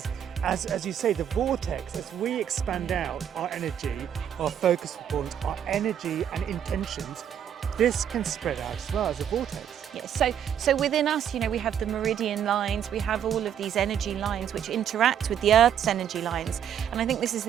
as you say, the vortex, as we expand out our energy, our focus points, our energy and intentions, this can spread out as well as a vortex. Yes, so within us, you know, we have the meridian lines, we have all of these energy lines which interact with the Earth's energy lines. And I think this is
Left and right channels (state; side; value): quieter; left; 9.3 dB